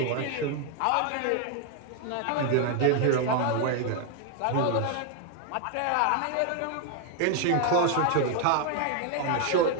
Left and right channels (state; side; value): different; both; correlation 0.01